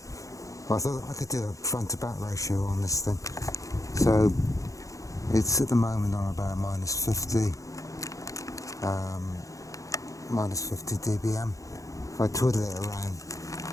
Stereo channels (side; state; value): right; late; 0.16 ms